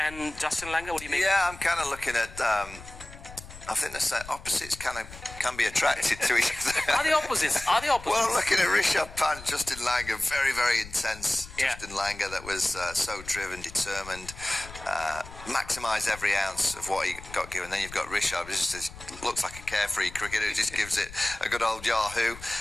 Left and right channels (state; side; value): noise; left; rumble, 16 dB below the sound